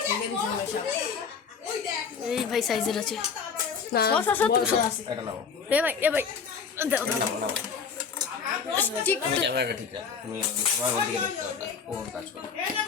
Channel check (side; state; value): right; quieter; 6.0 dB